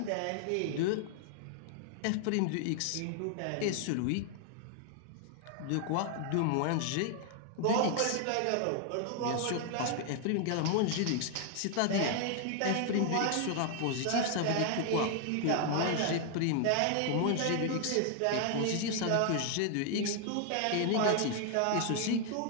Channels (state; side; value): different; both; correlation 0.00